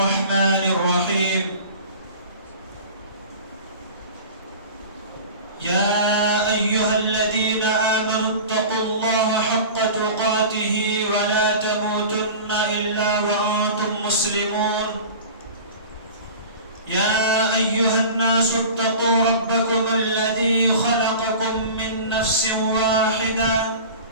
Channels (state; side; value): inverted; both; correlation -0.37